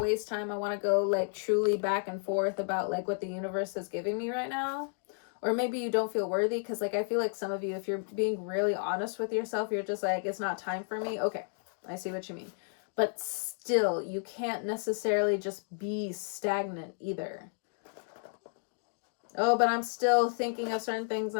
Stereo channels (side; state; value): right; silent; digital silence